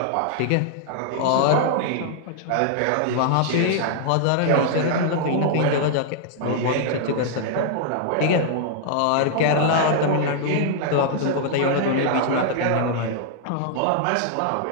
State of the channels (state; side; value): different; both; correlation -0.01